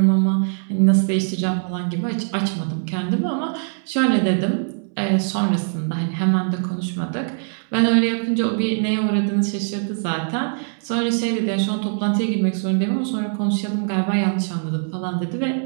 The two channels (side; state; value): left; silent; 64 dB below the other